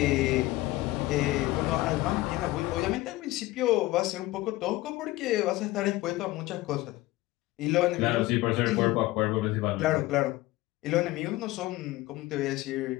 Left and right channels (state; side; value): quieter; right; 18.4 dB